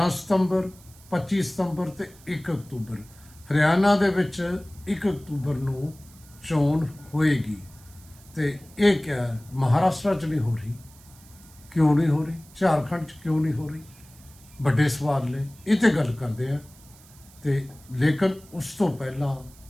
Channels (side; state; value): right; noise; hiss, 24 dB below the sound